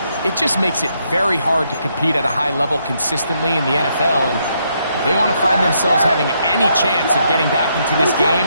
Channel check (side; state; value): both; inverted; correlation -0.76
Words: it just makes it very hard to compete at a high level consistently in the NFL. And if they want to find themselves having any chance of getting back into this